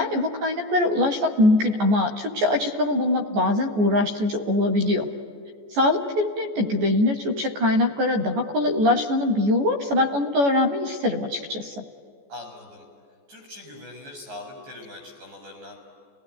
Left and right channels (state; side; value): late; left; 14 ms